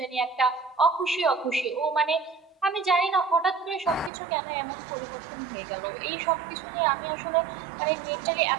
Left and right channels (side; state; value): left; drops out; at 4.1 s